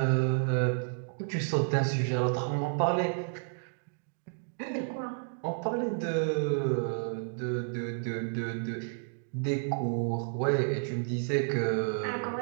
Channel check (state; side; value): silent; left; digital silence